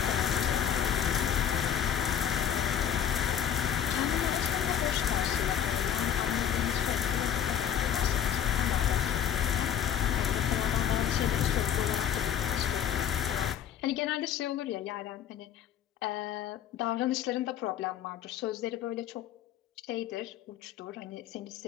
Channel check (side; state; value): right; quieter; 9.4 dB